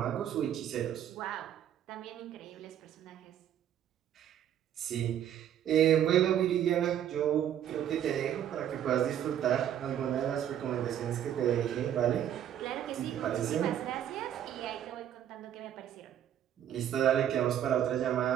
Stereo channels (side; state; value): left; quieter; 10.4 dB